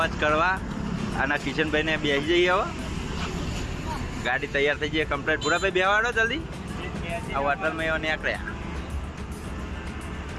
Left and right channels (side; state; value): both; identical; correlation 1.00